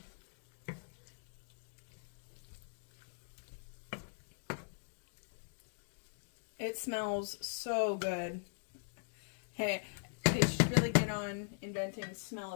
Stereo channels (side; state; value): right; silent; digital silence